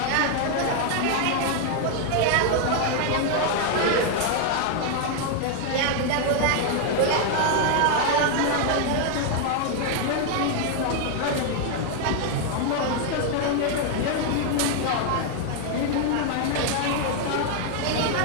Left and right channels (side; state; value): both; different; correlation 0.00